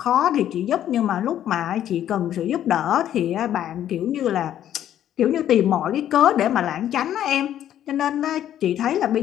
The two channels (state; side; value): quieter; right; 11.1 dB